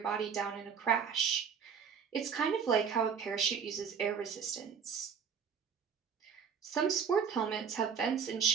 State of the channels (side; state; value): left; quieter; 6.9 dB